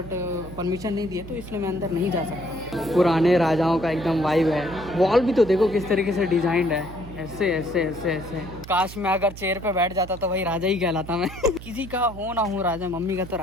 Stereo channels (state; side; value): noise; right; hum, 13 dB below the sound